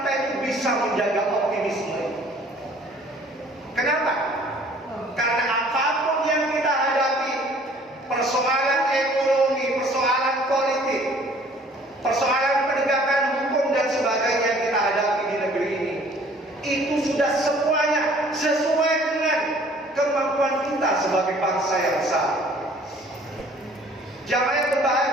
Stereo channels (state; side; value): normal; both; correlation 0.55